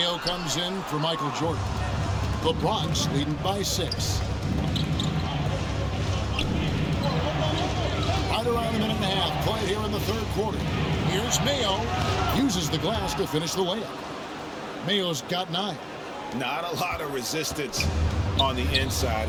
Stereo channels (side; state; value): both; identical; correlation 1.00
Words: comes in for Michael Jordan. The Bronx leading by 6. Right around a minute and a half played here in the third quarter. Here's Mayo. Uses the glass to finish the layup. Mayo's got 9. Not a lot of resistance on the inside,